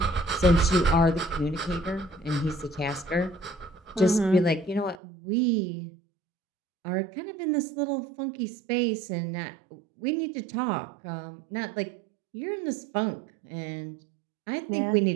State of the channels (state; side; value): drops out; left; at 5.0 s